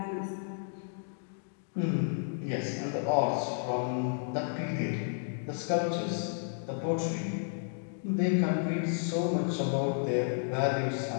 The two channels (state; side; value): silent; right; digital silence